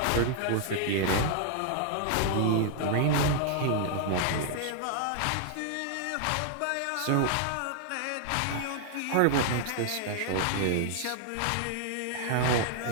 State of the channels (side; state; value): both; different; correlation 0.00